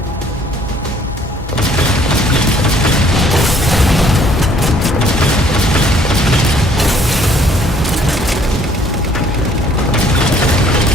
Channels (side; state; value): both; normal; correlation 0.60